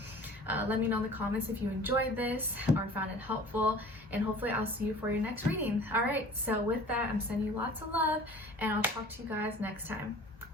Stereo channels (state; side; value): normal; both; correlation 0.45